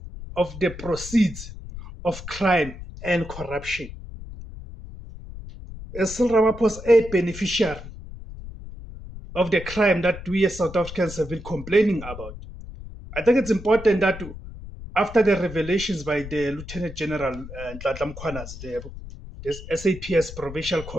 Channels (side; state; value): left; noise; rumble, 13 dB below the sound